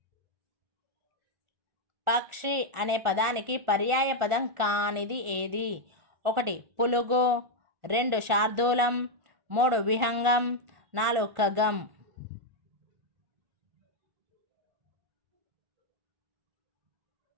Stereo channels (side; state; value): left; late; 1.4 ms